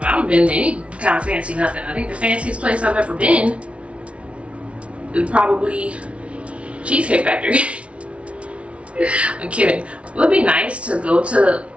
been to any kind of fancy nothing. I think the fanciest place I've ever been is probably Cheesecake Factory. I'm kidding. It would be nice to go to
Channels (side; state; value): left; late; 0.061 ms